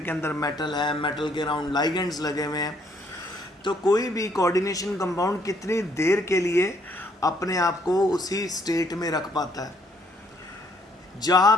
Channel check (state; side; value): normal; both; correlation 0.67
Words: के अंदर मेटल है, मेटल के अराउंड लाइगेंड्स लगे हुए हैं। तो कोई भी कोऑर्डिनेशन कंपाउंड कितनी देर के लिए अपने आप को उसी स्टेट में रख पाता है जहाँ